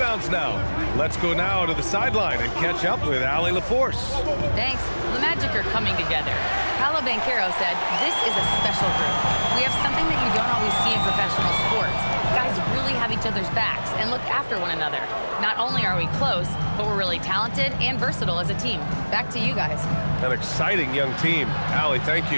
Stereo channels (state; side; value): inverted; both; correlation -1.00